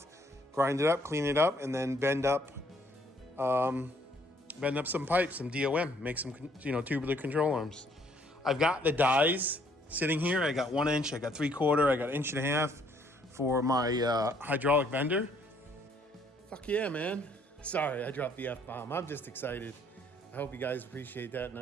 grind it up, clean it up, and then bend up some pipes, some DOM, make some, you know, tubular control arms. I've got the dies sitting here. I got 1 inch, I got 3/4, I got 1.5 inch for my hydraulic bender. Fuck yeah, man. Sorry, I dropped the F-bomb. I'm just excited. I hope you guys appreciate that and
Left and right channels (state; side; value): normal; both; correlation 0.65